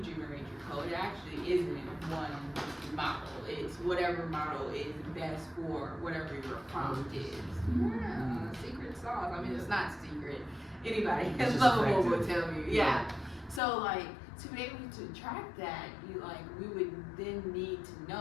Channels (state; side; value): drops out; right; at 13.6 s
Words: generate your code, it actually isn't one model. It's whatever model is best for whatever your prompt is. Yeah, secret sauce. I mean, it's not secret. Anybody at Lovable will tell you. Yeah. So like to be able to track that, we would then need to